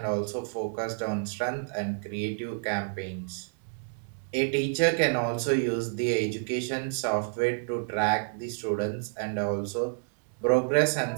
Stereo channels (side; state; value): left; silent; digital silence